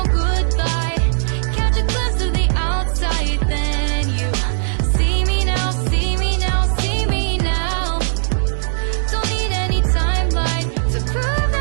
good life, catch a glimpse of the outside, then you see me now, see me now, see me now. Don't need any timeline to prove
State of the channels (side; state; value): left; silent; digital silence